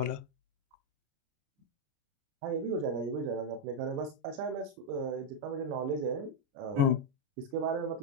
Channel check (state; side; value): late; left; 29 ms